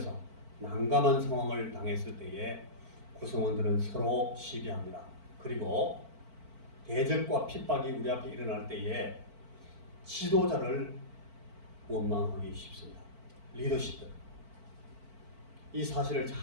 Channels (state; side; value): late; left; 4.5 ms